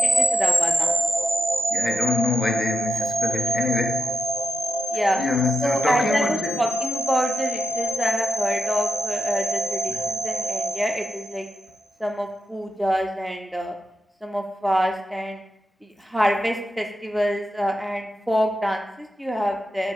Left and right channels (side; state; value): both; normal; correlation 0.87